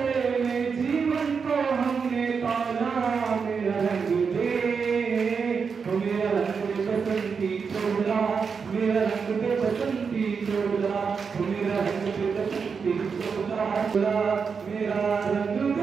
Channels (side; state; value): left; quieter; 5.7 dB